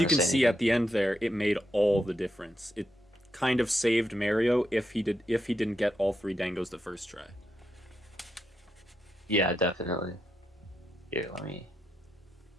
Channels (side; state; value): both; normal; correlation 0.84